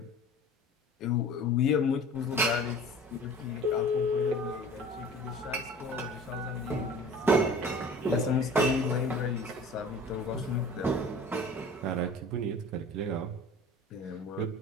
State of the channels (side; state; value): both; normal; correlation 0.43